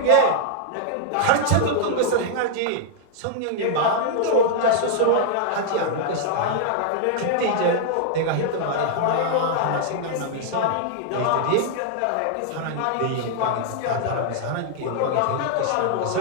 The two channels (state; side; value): different; both; correlation -0.01